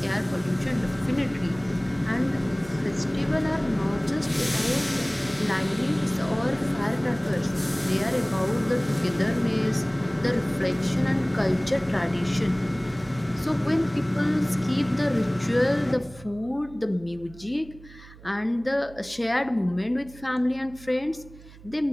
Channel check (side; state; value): right; noise; hum, 20 dB below the sound